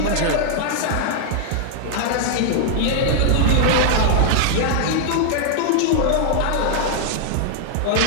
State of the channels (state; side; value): different; both; correlation -0.01